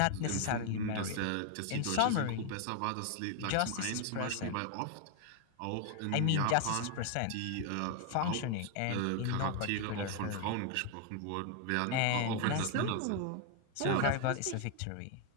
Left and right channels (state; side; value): different; both; correlation 0.00